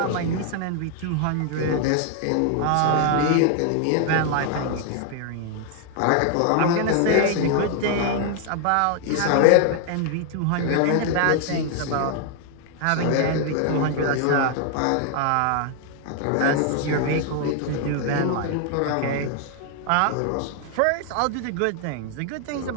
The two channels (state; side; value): different; both; correlation 0.00